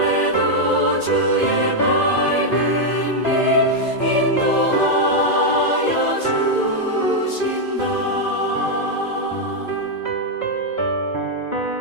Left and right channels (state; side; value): late; right; 2.4 ms